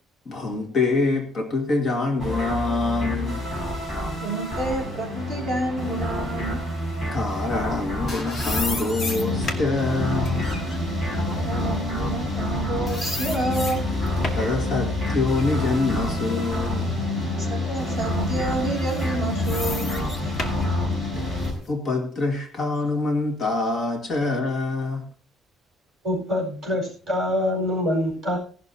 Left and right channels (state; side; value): normal; both; correlation 0.64